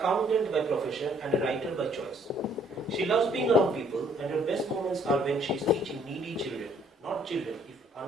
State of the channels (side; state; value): both; normal; correlation 0.63